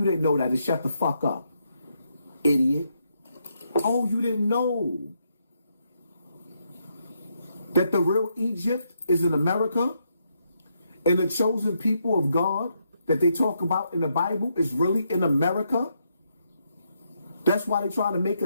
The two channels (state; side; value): inverted; both; correlation -0.78